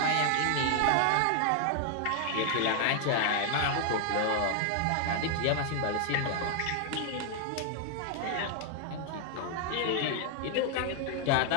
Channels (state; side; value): different; both; correlation 0.00